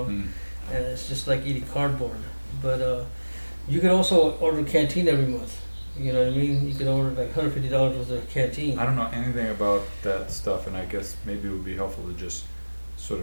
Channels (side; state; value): both; inverted; correlation -1.00